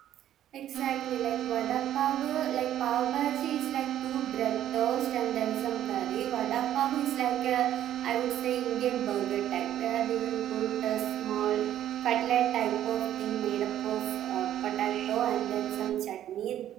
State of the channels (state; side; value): quieter; left; 11.6 dB